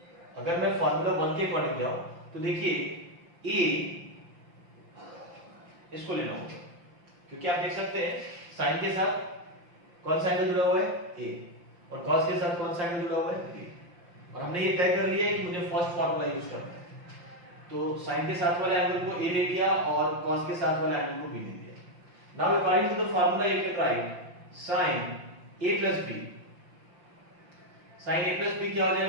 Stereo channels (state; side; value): late; left; 5.8 ms